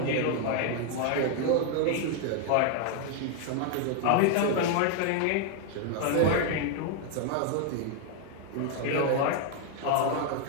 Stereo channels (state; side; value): different; both; correlation 0.00